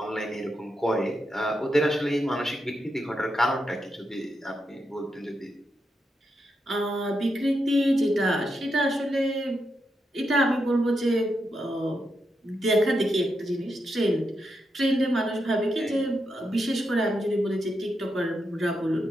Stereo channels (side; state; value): both; normal; correlation 0.84